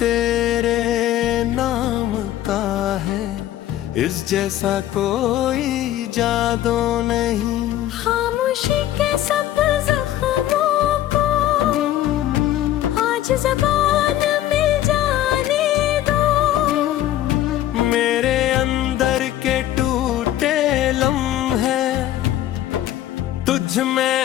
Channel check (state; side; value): quieter; right; 13.2 dB